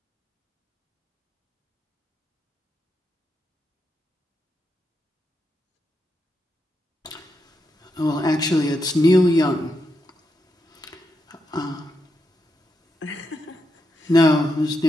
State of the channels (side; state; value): both; normal; correlation 0.84